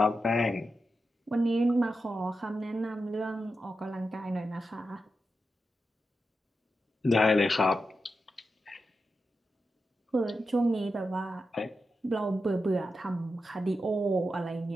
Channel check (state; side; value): normal; both; correlation 0.89